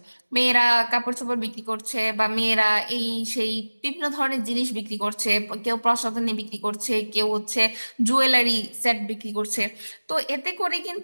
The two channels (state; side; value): inverted; both; correlation -1.00